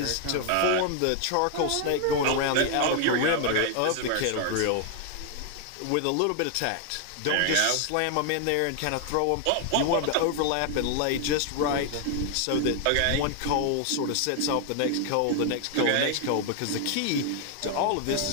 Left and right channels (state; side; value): different; both; correlation 0.00